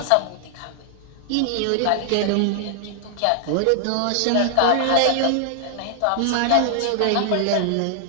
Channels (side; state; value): both; different; correlation -0.01